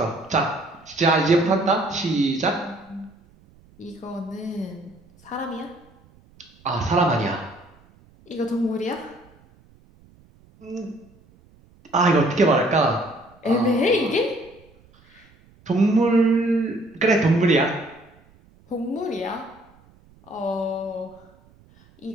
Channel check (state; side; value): noise; right; rumble, 29 dB below the sound